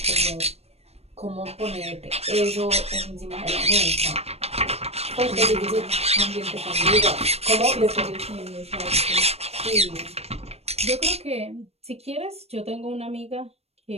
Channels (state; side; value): late; left; 0.30 ms